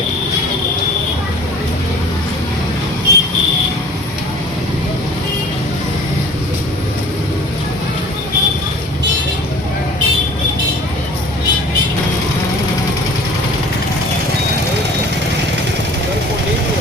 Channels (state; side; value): normal; both; correlation 0.46